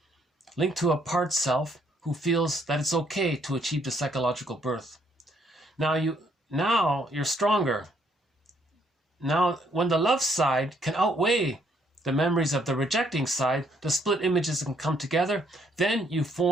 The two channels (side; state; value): both; normal; correlation 0.69